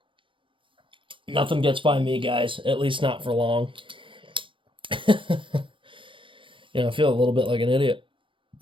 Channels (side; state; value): left; late; 0.25 ms